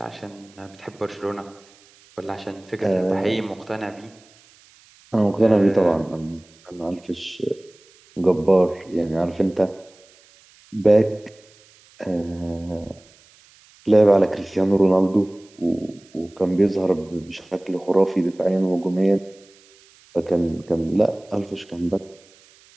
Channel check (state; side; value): noise; right; hiss, 28 dB below the sound